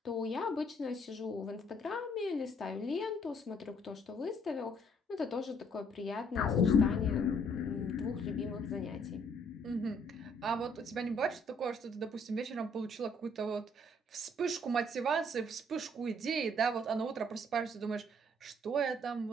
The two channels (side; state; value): both; normal; correlation 0.64